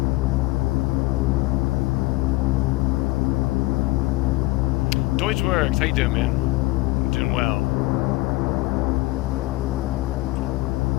Works. How you doing, man? I'm doing well.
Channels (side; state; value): right; quieter; 19.5 dB